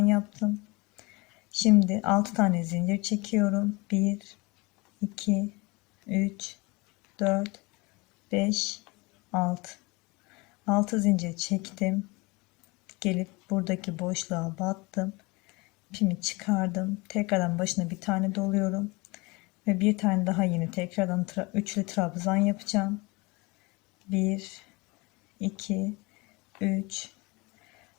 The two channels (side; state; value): right; quieter; 25.3 dB